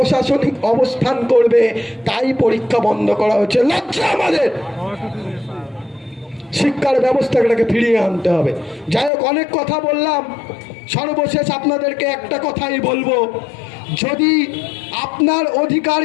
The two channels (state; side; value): drops out; right; at 9.1 s